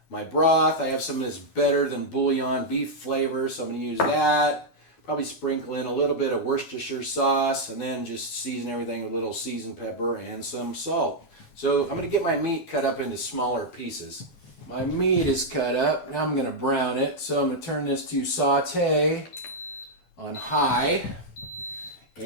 broth, I have some of this Better Than Bouillon beef flavor, so I'm going to use that. Probably sprinkle in a little bit of Worcestershire sauce, and then just season everything with a little seasoned pepper and some salt. So I'm going to get my meat cut up into smaller pieces. My meat is cut up. Now I'm going to brown it. So I'm going to turn this to saute on high.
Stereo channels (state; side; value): late; right; 12 ms